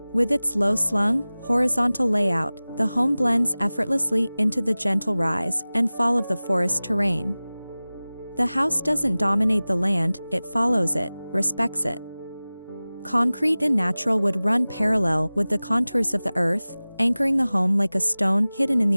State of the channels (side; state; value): both; inverted; correlation -0.98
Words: With its low-slung, horizontal layout, the home blends effortlessly into the gentle rise and fall of the forest terrain. The house doesn't dominate the land, it follows it, respects it. Concrete and natural wood run parallel with the contours of the earth, anchoring the home like a stone hidden in